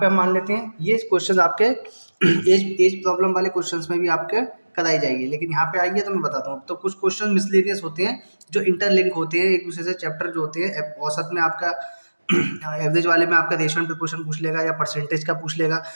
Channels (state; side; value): inverted; both; correlation -1.00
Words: हम मान लेते हैं। ये क्वेश्चन आपके एज प्रॉब्लम वाले क्वेश्चंस में भी आपके कराई जाएगी, लेकिन यहाँ पे आइए तो मैं बताता हूँ। तो कुछ क्वेश्चन मिसलेनियस होते हैं जो इंटरलिंक होते हैं एक दूसरे से, चैप्टर जो होते हैं औसत में आपका एवरेज वाले में आपका रेशियो एंड प्रोपोर्शन पूछ लेगा या परसेंटेज का पूछ लेगा,